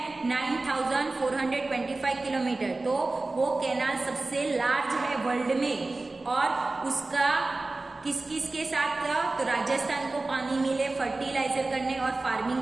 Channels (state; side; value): quieter; left; 3.2 dB